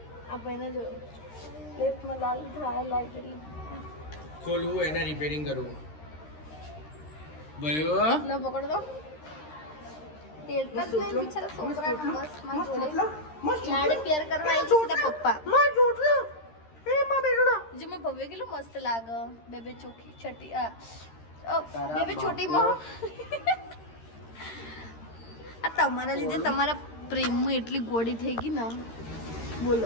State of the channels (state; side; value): late; right; 13 ms